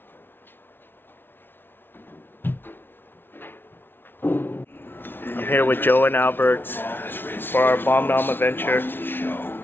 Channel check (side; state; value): right; late; 0.10 ms